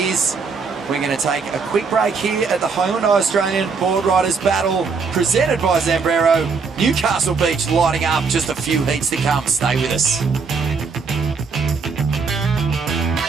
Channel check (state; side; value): quieter; left; 5.0 dB